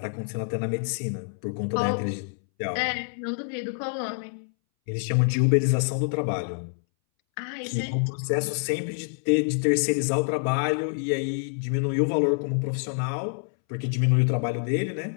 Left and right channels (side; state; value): right; silent; 61 dB below the other